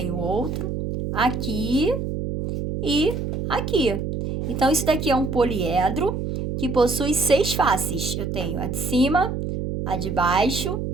outro, aqui e aqui. Então, isso daqui é um poliedro que possui 6 faces. Eu tenho a de cima, a de baixo,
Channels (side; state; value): right; noise; hum, 3 dB below the sound